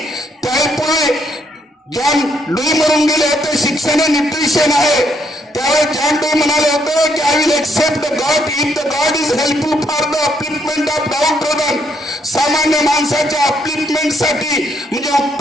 त्यामुळे जॉन लुई म्हणून गेले होते शिक्षण हे न्यूट्रिशन आहे. त्यावेळेस जॉन लुई म्हणाले होते की I will accept the god if the god is helpful for the upliftment of downtrodden. सामान्य माणसाच्या अपलिफ्टमेंटसाठी म्हणजे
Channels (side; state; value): both; normal; correlation 0.72